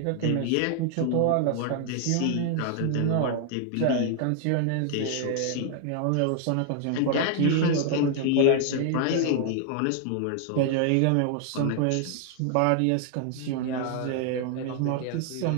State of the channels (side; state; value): both; different; correlation 0.00